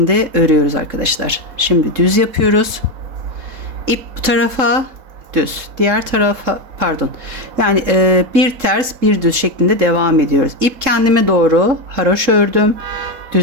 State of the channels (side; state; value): left; late; 3.7 ms